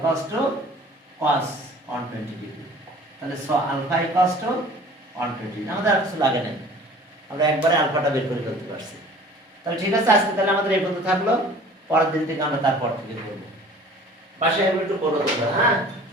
to cos 120 degree. তাহলে সো আলফা ইকুয়ালস টু 120। আমাদের আর কিছু লাগে না, আমরা একবারে আলফাটা বের করে ফেলতে পারছি। তাহলে ঠিক আছে, আজকে তাহলে আমাদের এই পর্যন্ত থাকলো। পরের দিন থেকে আমরা তারপর থেকে করব। বাসায় একটু করো তোমরা, হ্যাঁ,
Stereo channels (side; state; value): both; normal; correlation 0.47